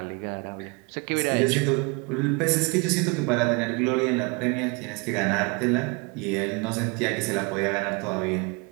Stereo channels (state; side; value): quieter; left; 29.8 dB